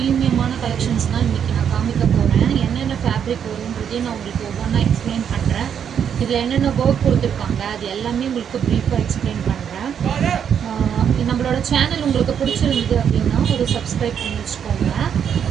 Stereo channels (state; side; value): quieter; left; 8.2 dB